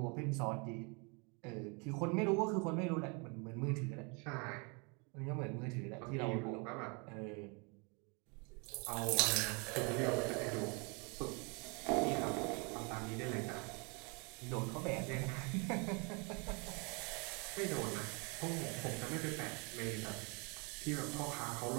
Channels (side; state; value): left; quieter; 32.5 dB